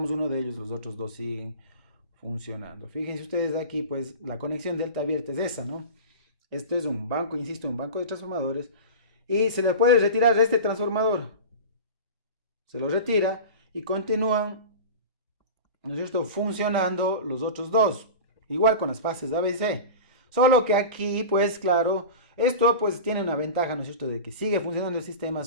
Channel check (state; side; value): inverted; both; correlation -0.30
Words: uno de ellos, los otros 2 siguen funcionando. Fíjense ustedes aquí, pues, la conexión delta abierta es esa, ¿no? Esto es un banco, insisto, un banco de transformadores, y se le puede retirar este transformador. Se lo retira y continúan, ¿no es cierto?, funcionando los otros dos, igual con las fases A, B y C. Solo que aquí, pues claro, esto pues tiene una ventaja, ¿no es cierto?, de que sigue funcionando el sistema,